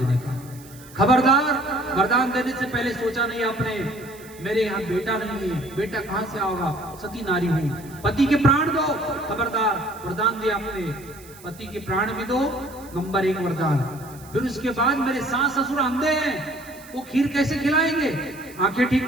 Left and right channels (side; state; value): right; noise; hiss, 21 dB below the sound